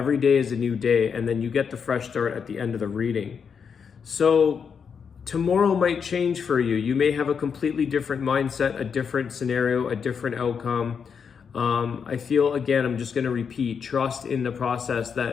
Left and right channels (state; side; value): quieter; right; 6.5 dB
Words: day is a new day, and then you get the fresh start at the end of the reading. So tomorrow might change for you. You may have a completely different mindset, a different scenario, a different outcome. I feel, again, I'm just going to repeat, trust in the process